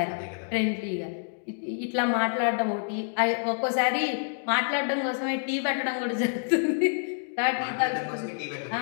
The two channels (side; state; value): right; silent; digital silence